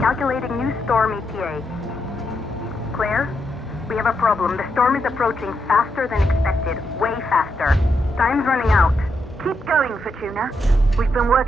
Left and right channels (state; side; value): normal; both; correlation 0.81